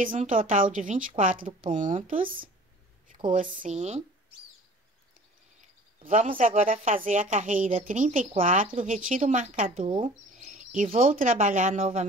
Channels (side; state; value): both; normal; correlation 0.46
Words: um total de 24 pontos. Ficou assim. Vamos agora fazer a carreira 34, retiro o marcador e vou trabalhar